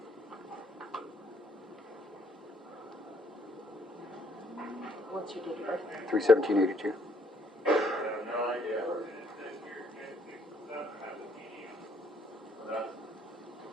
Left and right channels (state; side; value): normal; both; correlation 0.68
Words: What's your date of birth? 3/17/82.